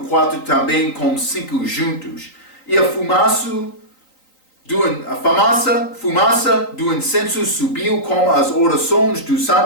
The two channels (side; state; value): right; late; 3.9 ms